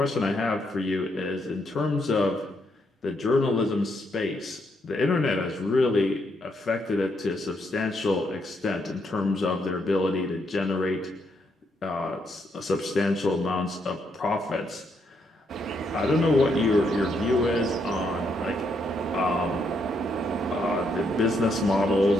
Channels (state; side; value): normal; both; correlation 0.76